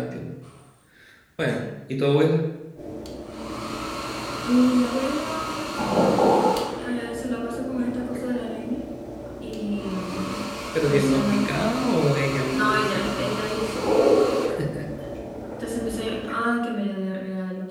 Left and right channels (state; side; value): identical; both; correlation 1.00